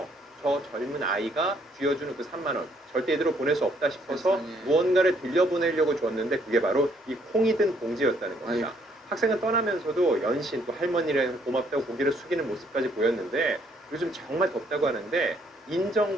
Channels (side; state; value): both; normal; correlation 0.67